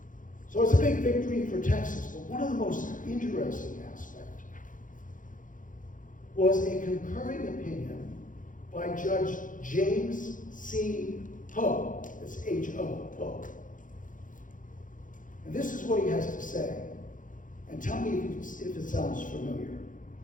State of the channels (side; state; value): right; late; 0.38 ms